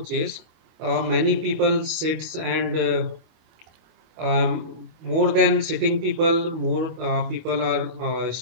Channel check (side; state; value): left; late; 25 ms